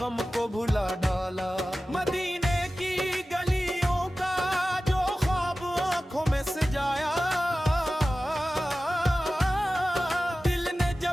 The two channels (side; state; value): both; normal; correlation 0.95